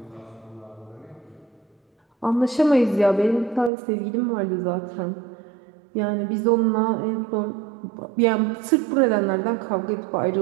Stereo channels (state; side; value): drops out; left; at 3.7 s